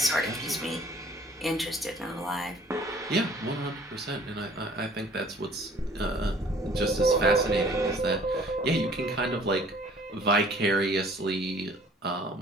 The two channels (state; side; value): normal; both; correlation 0.54